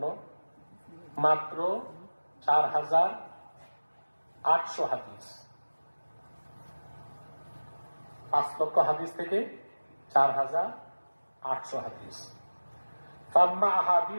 মাত্র 4,800 হাদিস। 5 লক্ষ হাদিস থেকে 4,800 হাদিস। ফাম্মা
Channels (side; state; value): both; inverted; correlation -1.00